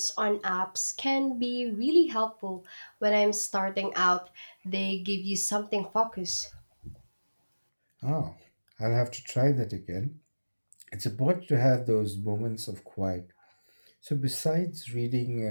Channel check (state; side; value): inverted; both; correlation -1.00